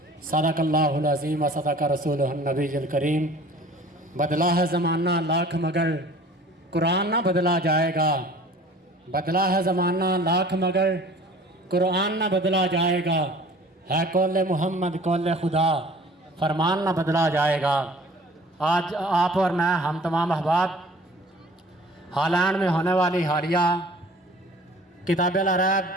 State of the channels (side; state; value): both; normal; correlation 0.48